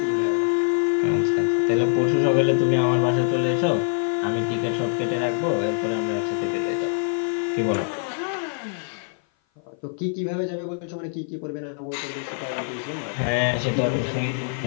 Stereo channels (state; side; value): silent; right; 56 dB below the other